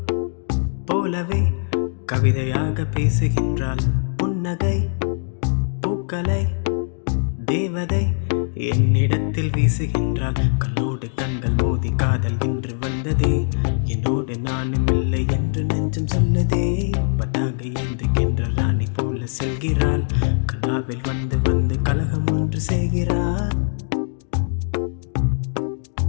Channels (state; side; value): silent; right; digital silence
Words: போலவே கவிதையாக பேசுகின்றாள். புன்னகை பூக்களை தேவதை என்னிடத்தில் வீசுகின்றாள். கண்ணோடு கண்கள் மோதி காதல் இன்று வந்ததே. என்னோடு நானும் இல்லை என்று நெஞ்சம் சொல்லதே. பதாக ஏந்துகின்ற ராணி போல செல்கிறாள். கனாவில் வந்து வந்து கலகம் ஒன்று செய்கிறாள்.